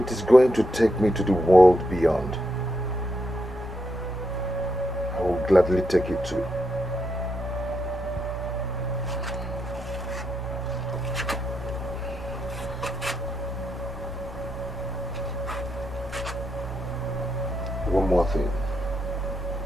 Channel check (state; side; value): normal; both; correlation 0.81